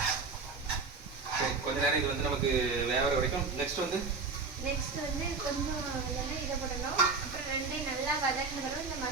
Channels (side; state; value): left; quieter; 4.4 dB